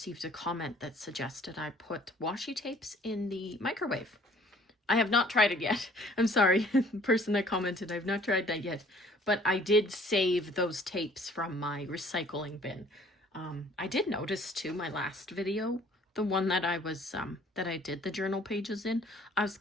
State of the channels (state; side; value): normal; both; correlation 0.56